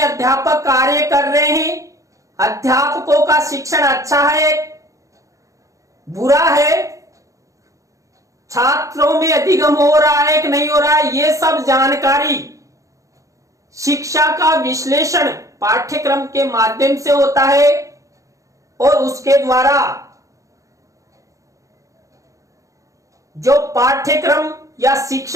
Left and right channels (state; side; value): late; left; 0.16 ms